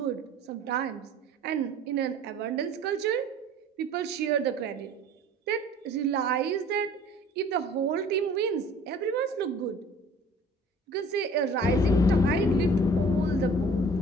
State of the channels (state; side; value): normal; both; correlation 0.48